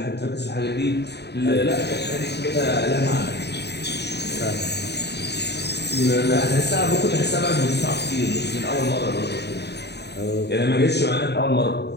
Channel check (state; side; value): late; right; 0.49 ms